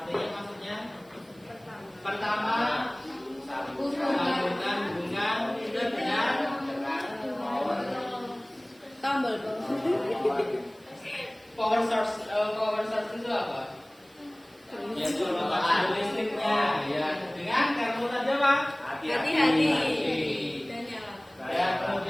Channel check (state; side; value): noise; right; hiss, 30 dB below the sound